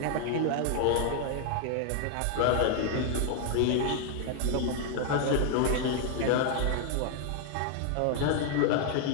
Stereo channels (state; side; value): different; both; correlation 0.00